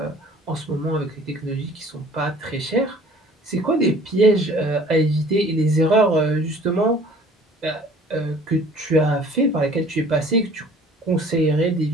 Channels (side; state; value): both; normal; correlation 0.51